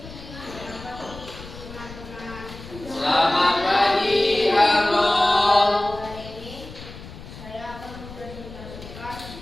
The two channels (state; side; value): noise; left; rumble, 14 dB below the sound